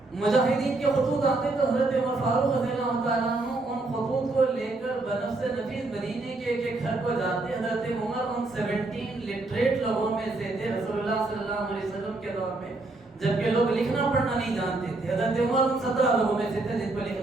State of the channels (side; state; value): left; quieter; 3.1 dB